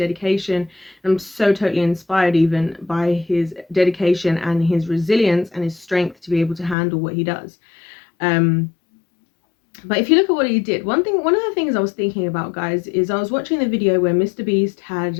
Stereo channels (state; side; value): drops out; right; at 6.8 s